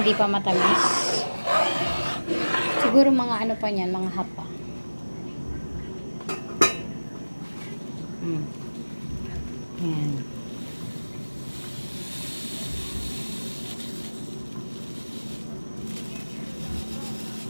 pa matamis. Siguro mga pa niyan, mga hapa. Ayan.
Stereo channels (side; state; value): both; inverted; correlation -1.00